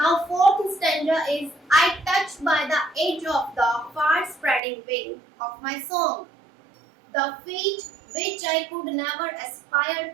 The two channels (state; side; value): drops out; left; at 4.6 s